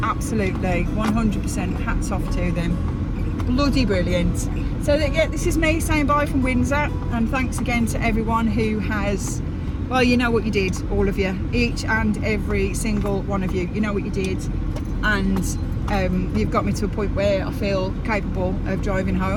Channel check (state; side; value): identical; both; correlation 1.00